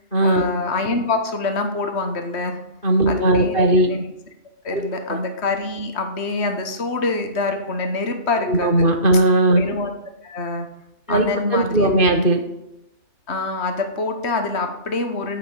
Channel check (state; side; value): late; right; 3.1 ms